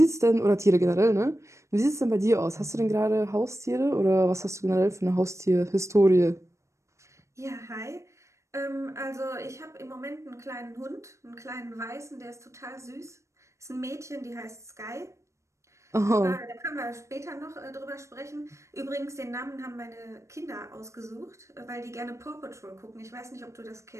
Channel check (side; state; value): left; late; 0.14 ms